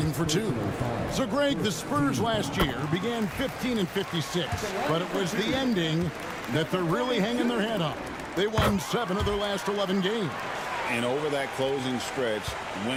for 2. So, Greg, the Spurs last year began 15 and 56, but it was the ending that they're really hanging their head on. They won 7 of their last 11 games. And over that closing stretch,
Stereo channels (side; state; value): both; identical; correlation 1.00